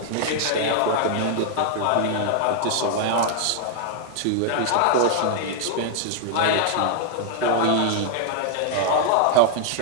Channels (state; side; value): different; both; correlation -0.01